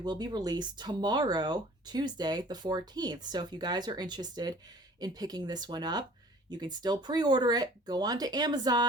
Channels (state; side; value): normal; both; correlation 0.49